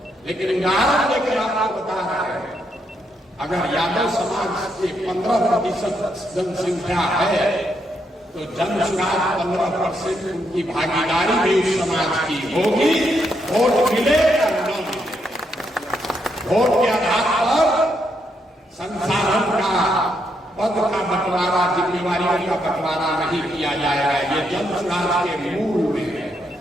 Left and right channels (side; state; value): both; normal; correlation 0.78